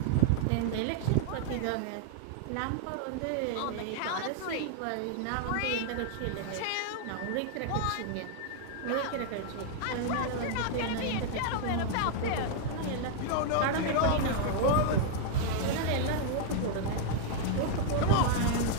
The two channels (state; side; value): different; both; correlation 0.00